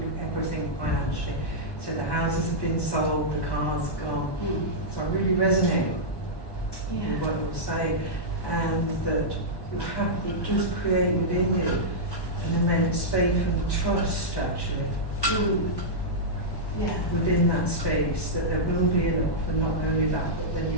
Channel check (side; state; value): right; late; 1.1 ms